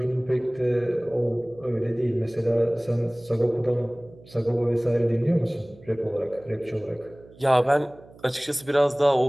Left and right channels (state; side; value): noise; right; hum, 23 dB below the sound